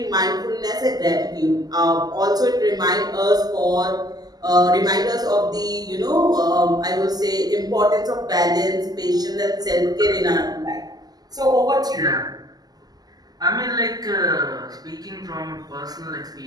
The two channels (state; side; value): late; left; 0.19 ms